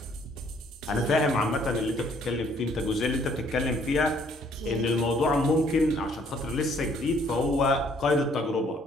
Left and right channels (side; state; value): both; normal; correlation 0.63